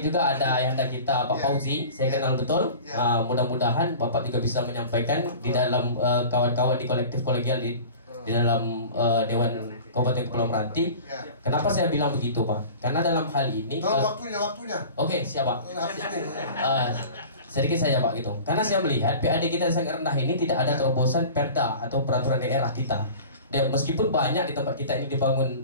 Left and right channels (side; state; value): both; inverted; correlation -0.39